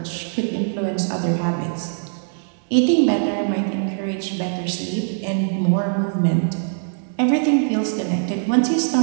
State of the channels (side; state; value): left; silent; 60 dB below the other